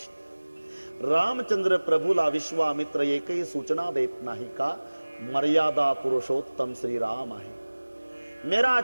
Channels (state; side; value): inverted; both; correlation -1.00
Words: रामचंद्र प्रभूला विश्वामित्र एकही सूचना देत नाही का? मर्यादा पुरुषोत्तम श्री राम आहे. मेरा